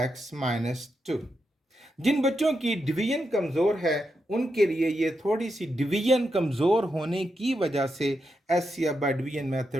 minus 2। जिन बच्चों की डिवीजन कमज़ोर है उनके लिए ये थोड़ी सी डिवीजन कमज़ोर होने की वजह से एचसीएफ बाय डिवीजन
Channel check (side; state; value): both; normal; correlation 0.85